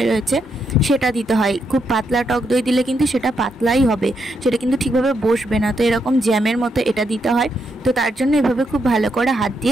রয়েছে সেটা দিতে হয়। খুব পাতলা টক দই দিলে কিন্তু সেটা পাতলাই হবে, সেটা কিন্তু ঠিকভাবে বসবে না। তো এরকম জ্যামের মতো এটা দিতে হয়। তো তার জন্য এভাবে খুব ভালো করে হাত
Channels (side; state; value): both; normal; correlation 0.80